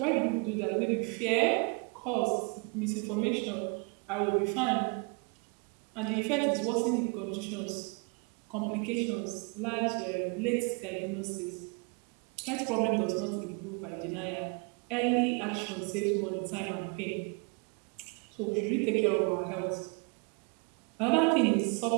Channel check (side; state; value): left; quieter; 33.9 dB